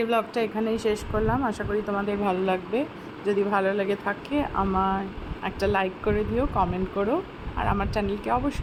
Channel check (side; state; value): both; identical; correlation 1.00